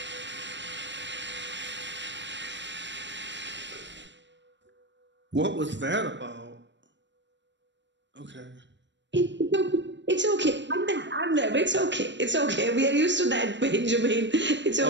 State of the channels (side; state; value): left; late; 0.53 ms